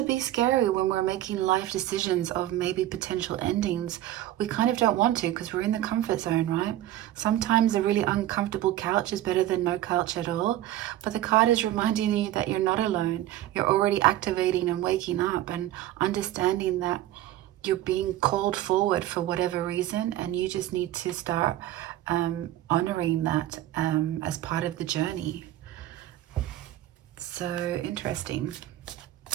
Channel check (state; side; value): quieter; left; 13.8 dB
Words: be scary when we're making life decisions of maybe potential endings. We kind of don't want to, because we're in the comfort zone, right? Sometimes a really uncomfortable couch is better than no couch at all. But the card is reminding you that you're not alone. You're already activating and waking up and understanding that you're being called forward for whatever reason, and you just need to start honoring that as part of the journey. So interesting.